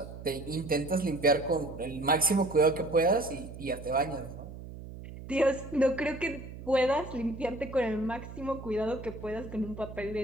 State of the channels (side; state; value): right; noise; hum, 12 dB below the sound